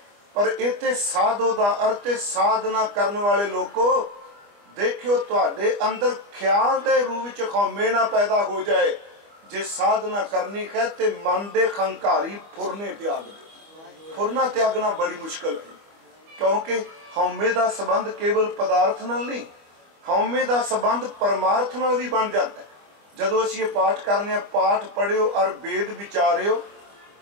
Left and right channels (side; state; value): left; late; 25 ms